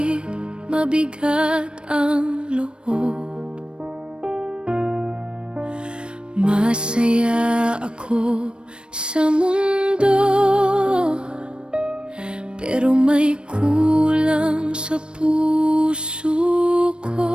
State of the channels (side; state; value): left; late; 0.055 ms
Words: mabigat ang loob. Masaya ako sa mundo, pero may kulang sa puso